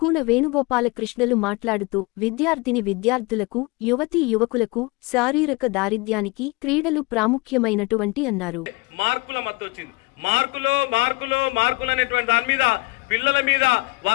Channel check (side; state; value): right; quieter; 25.3 dB